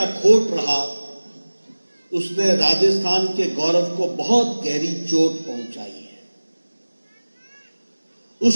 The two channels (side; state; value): both; inverted; correlation -1.00